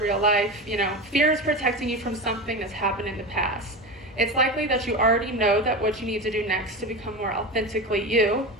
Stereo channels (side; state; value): both; normal; correlation 0.24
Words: life, fear is protecting you from something that's happened in the past. It's likely that you already know that what you need to do next to become more authentically you,